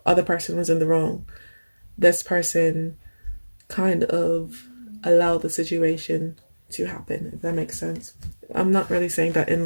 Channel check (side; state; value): both; inverted; correlation -1.00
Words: other person was in the wrong, this person kind of allowed the situation to happen, if that makes sense. I'm not really saying that